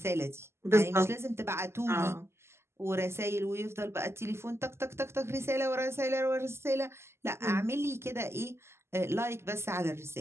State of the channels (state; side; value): late; left; 0.12 ms